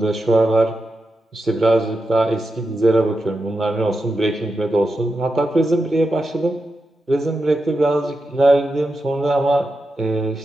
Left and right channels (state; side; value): normal; both; correlation 0.88